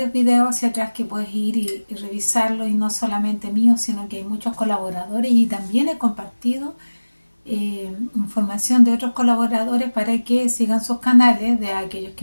videos hacia atrás que puedes ir y revisarlo, y no solamente míos, sino que hay muchos colaboradores y también he compartido información de otros colaboradores para que sigan sus canales, de aquellos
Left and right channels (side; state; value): both; inverted; correlation -1.00